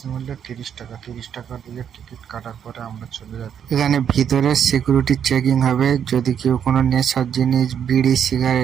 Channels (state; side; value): quieter; left; 8.5 dB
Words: মূল্য 30 টাকা। 30 টাকা দিয়ে টিকিট কাটার পরে আমরা চলে যাচ্ছি। এখানে ভিতরে সিকিউরিটি চেকিং হবে। যদি কেউ কোনো নেশার জিনিস, বিড়ি,